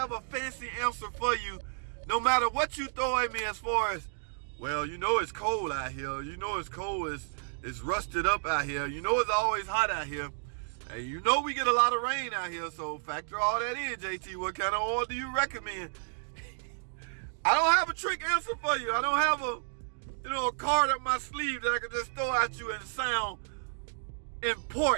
a fancy answer for you. No matter what you throw at me as far as, well, you know it's cold out here. You know it's cold. It's rusted up out here. You know it's always hot out here. And you know we get a lot of rain out here. So factor all that in, JT. What kind of oil do you recommend? I don't have a trick answer for you. I don't have a card up my sleeve that I can just throw at you and sound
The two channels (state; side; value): silent; left; digital silence